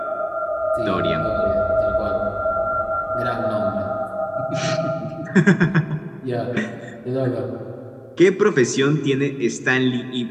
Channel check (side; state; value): both; identical; correlation 1.00